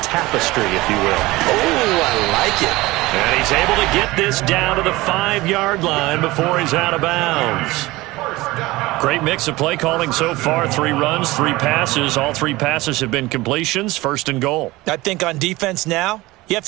tapestry, if you will. Oh, I like it. And he's able to get this down to the 5-yard line before he's out of bounds. Great mix of play calling so far. 3 runs, 3 passes. All 3 passes have been completions. 1st and goal. I think on defense now, you have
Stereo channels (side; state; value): left; quieter; 19.9 dB